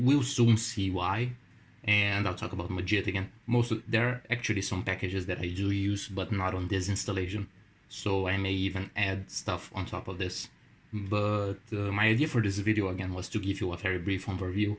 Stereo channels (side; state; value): both; identical; correlation 1.00